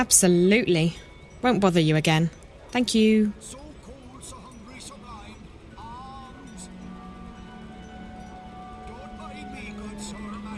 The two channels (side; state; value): both; identical; correlation 1.00